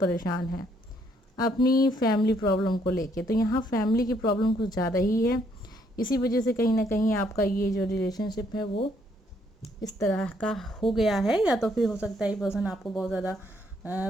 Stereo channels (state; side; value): normal; both; correlation 0.69